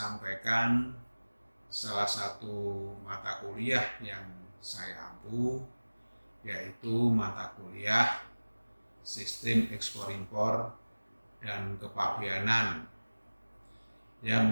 salah satu mata kuliah yang saya ampu, yaitu mata kuliah Sistem Ekspor-Impor dan Kepabeanan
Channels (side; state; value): both; inverted; correlation -1.00